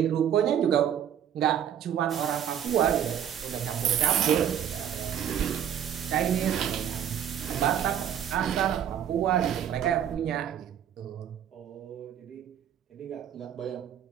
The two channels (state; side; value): quieter; left; 9.5 dB